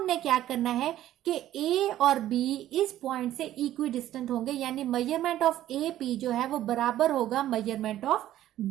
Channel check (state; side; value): quieter; left; 13.1 dB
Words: क्या करना है कि ए और बी इस पॉइंट से इक्वी डिस्टेंट होंगे, यानी मेजरमेंट ऑफ ए पी जो है वो बराबर होगा मेजरमेंट ऑफ